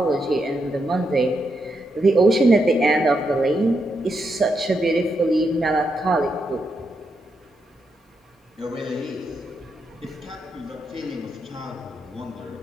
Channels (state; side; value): normal; both; correlation 0.82